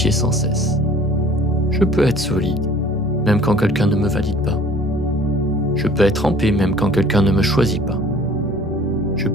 sans cesse. Je peux être solide, même quand quelqu'un ne me valide pas. Je peux être en paix, même quand quelqu'un ne me choisit pas. Je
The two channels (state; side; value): normal; both; correlation 0.50